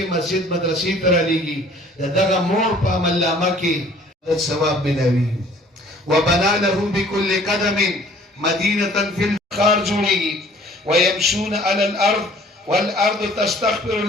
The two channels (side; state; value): both; normal; correlation 0.54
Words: مسجد مدرسې ته رالېږي د دغه مور په عملنامه کې د ثواب ملاوي. وبنا له بكل قدم مدينة في الخار جوړيږي ويمشون على الارض والارض تستغفر